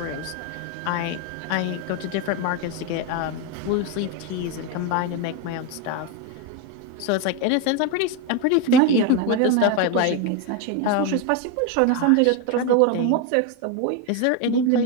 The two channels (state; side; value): different; both; correlation 0.02